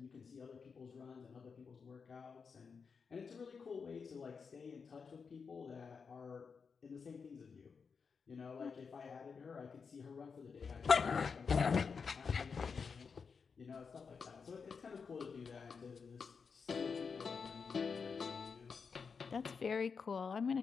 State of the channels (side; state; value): right; quieter; 5.6 dB